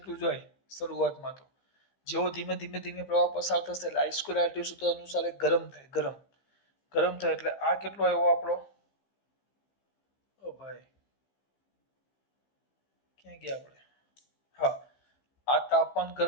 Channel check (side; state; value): right; late; 15 ms